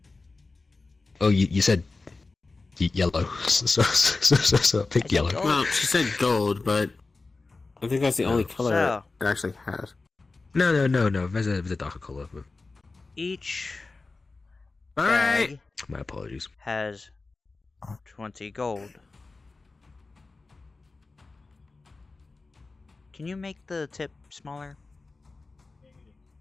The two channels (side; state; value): right; quieter; 3.7 dB